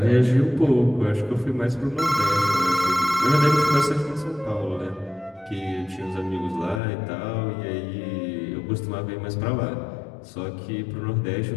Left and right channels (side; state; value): right; drops out; at 6.8 s